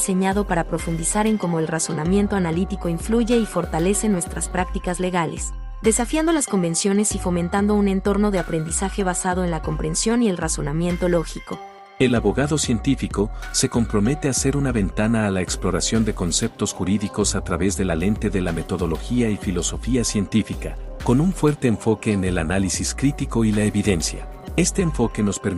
para profundizar en cómo el razonamiento analítico influye y fortalece nuestras prácticas legales, desafiando las convenciones y fomentando un entorno de aprendizaje basado en la comprensión y el razonamiento lógico. El abogado científico se compromete a ser una ventana a la exploración de conceptos jurídicos a través de la lente de la metodología y filosofía científica, con un fuerte enfoque en el análisis crítico y la evidencia. Este enfoque nos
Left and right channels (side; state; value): both; identical; correlation 1.00